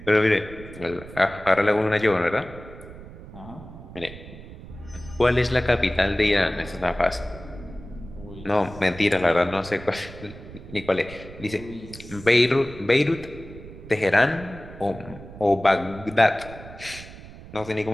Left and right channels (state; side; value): noise; right; rumble, 15 dB below the sound